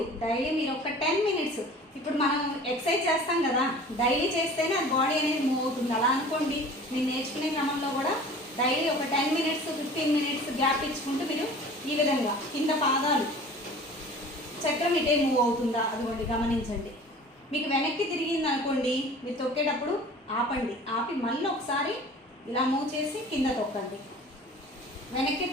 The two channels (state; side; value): normal; both; correlation 0.43